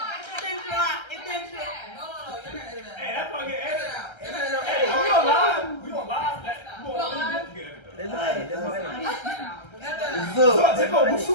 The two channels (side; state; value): right; late; 1.3 ms